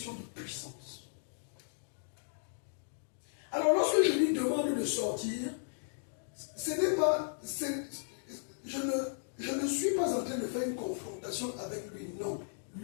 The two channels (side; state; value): right; silent; digital silence